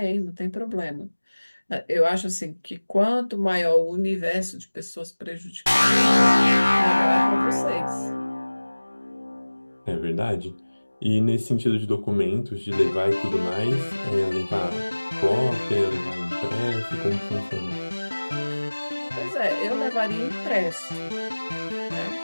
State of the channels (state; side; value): inverted; both; correlation -1.00